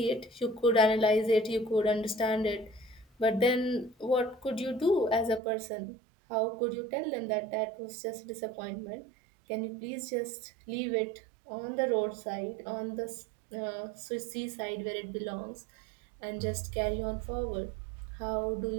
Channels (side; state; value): left; drops out; at 5.4 s